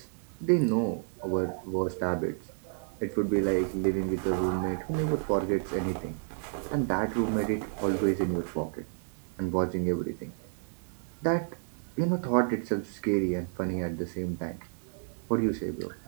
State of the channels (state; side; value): silent; left; digital silence